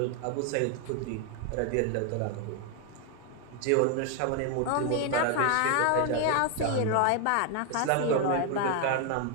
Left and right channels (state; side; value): different; both; correlation 0.01